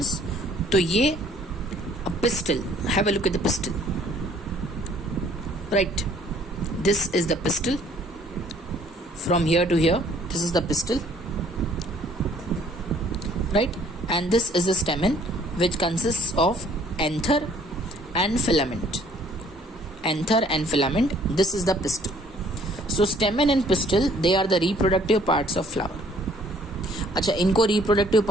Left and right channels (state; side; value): normal; both; correlation 0.59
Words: तो ये pistol, have a look at the pistol, right, this is the pistol. From here to here, this is the pistil, right? And this is the stamen, which consists of anther and filament. Anther and filament, this is the pistil. So stamen and pistil, they are the reproductive parts of flower. अच्छा, इनको reproductive